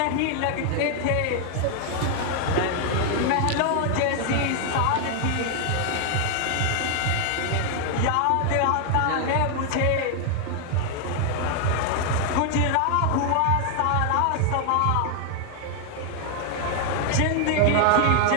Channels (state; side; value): different; both; correlation 0.00